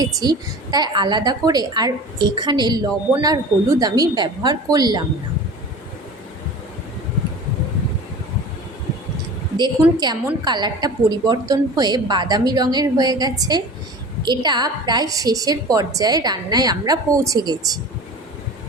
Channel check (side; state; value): both; normal; correlation 0.38